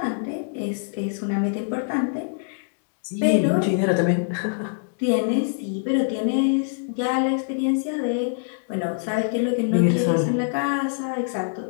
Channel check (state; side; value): silent; right; digital silence